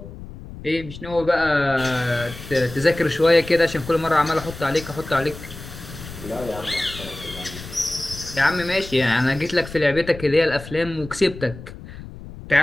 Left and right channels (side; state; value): left; noise; rumble, 14 dB below the sound